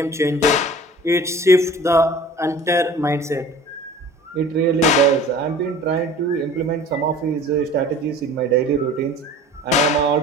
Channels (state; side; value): normal; both; correlation 0.44